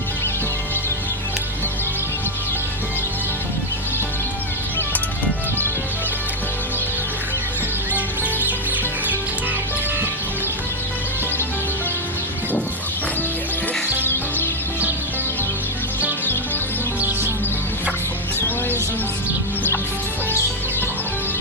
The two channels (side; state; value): both; normal; correlation 0.06